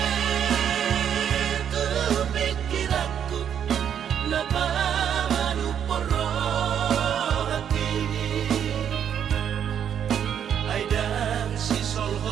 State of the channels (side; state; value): left; quieter; 8.8 dB